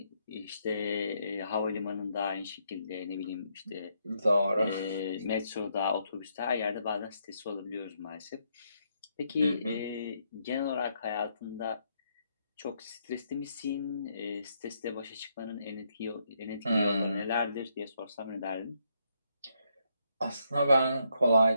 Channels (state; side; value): inverted; both; correlation -0.76